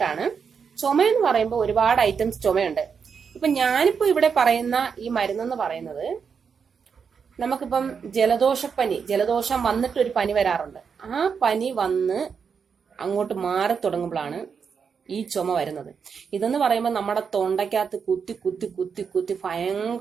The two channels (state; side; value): quieter; left; 6.3 dB